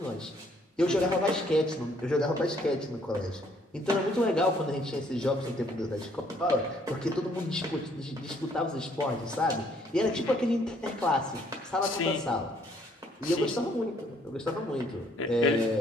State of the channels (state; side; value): normal; both; correlation 0.65